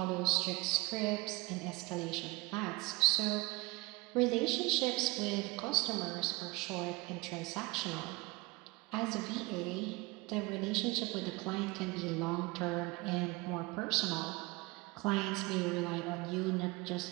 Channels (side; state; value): left; quieter; 23.4 dB